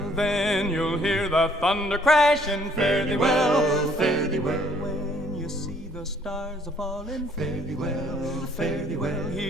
Then you'll hear the thunder crashing, fare thee well, fare thee well. When you see the stars a-falling, fare thee well, fare thee well.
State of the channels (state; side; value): normal; both; correlation 0.63